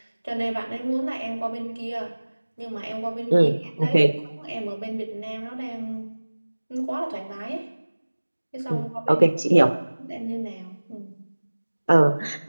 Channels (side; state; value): both; inverted; correlation -1.00